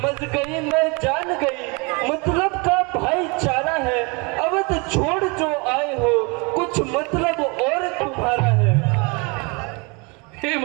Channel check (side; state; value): left; quieter; 29.7 dB